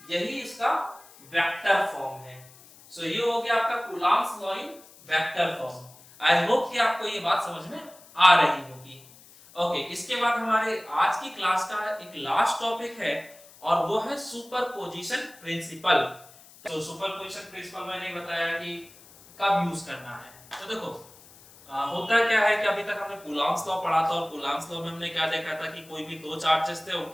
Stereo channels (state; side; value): noise; left; hiss, 23 dB below the sound